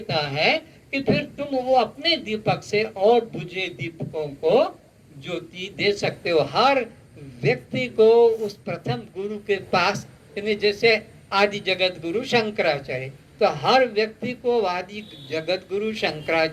है कि फिर तुम वो अपने दीपक से और बुझे दीपकों को ज्योति दे सकते हो। हर व्यक्ति को उस प्रथम गुरु के पास, जैसे आदि जगत गुरु शंकराचार्य, तो हर व्यक्ति को आदि जगत गुरु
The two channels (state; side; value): identical; both; correlation 1.00